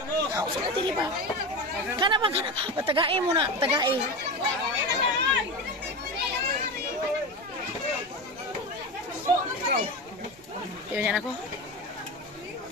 Usaw na tili ba? Kana ba? Patagain mo na, tagain. Yun yan ako.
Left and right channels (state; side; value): normal; both; correlation 0.23